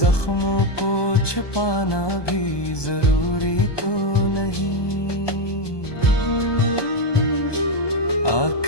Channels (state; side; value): late; right; 1.2 ms